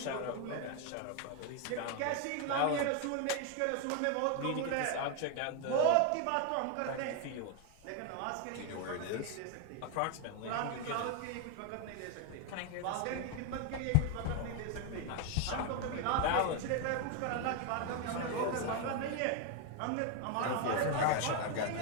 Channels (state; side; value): different; both; correlation 0.01